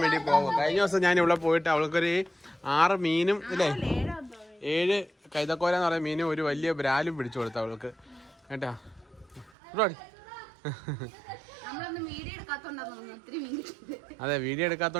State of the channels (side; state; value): left; drops out; at 9.5 s